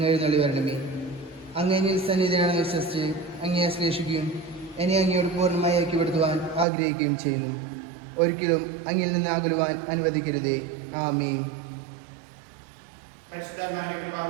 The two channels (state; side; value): drops out; left; at 6.7 s